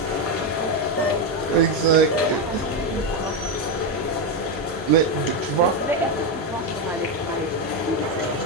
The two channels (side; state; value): both; normal; correlation 0.08